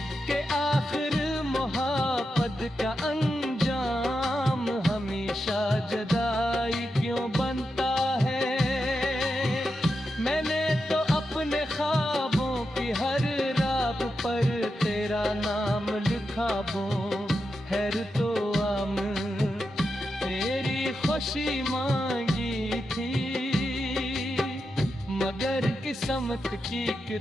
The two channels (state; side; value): normal; both; correlation 0.88